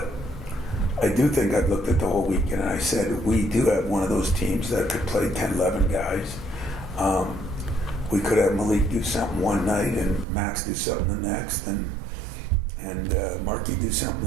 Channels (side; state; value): left; drops out; at 10.2 s